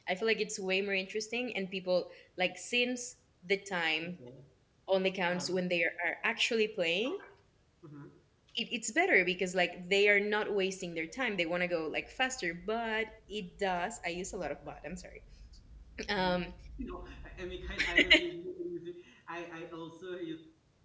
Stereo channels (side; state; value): both; identical; correlation 1.00